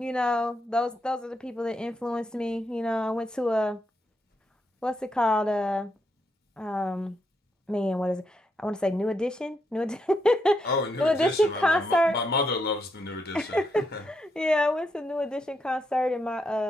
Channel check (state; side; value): normal; both; correlation 0.80